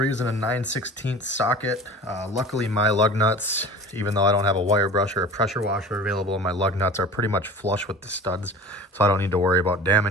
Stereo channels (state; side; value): normal; both; correlation 0.38